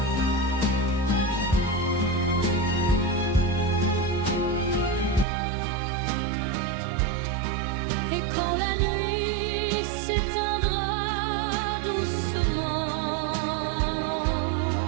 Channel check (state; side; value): drops out; left; at 5.2 s